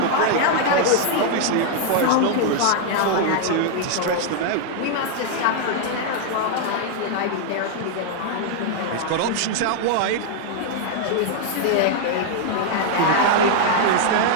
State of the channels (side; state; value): both; different; correlation 0.00